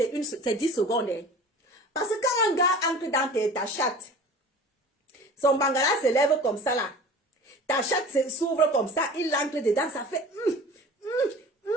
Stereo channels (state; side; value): normal; both; correlation 0.41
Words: 10 secondes. Hein. Parce que quand un gars entre dans ta chatte, son bangala se lève comme ça là. Ta chatte s'ouvre comme ça, il entre dedans, ça fait...